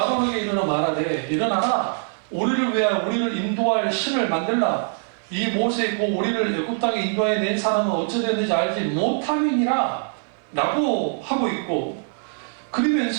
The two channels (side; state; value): left; silent; 56 dB below the other